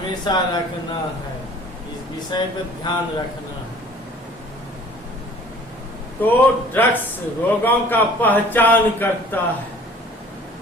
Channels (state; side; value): normal; both; correlation 0.50